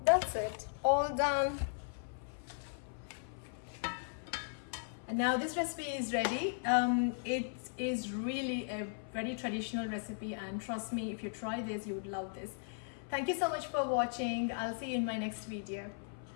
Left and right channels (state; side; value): silent; right; 53 dB below the other